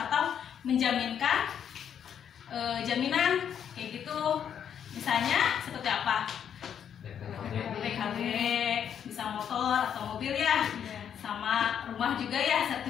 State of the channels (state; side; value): quieter; right; 8.6 dB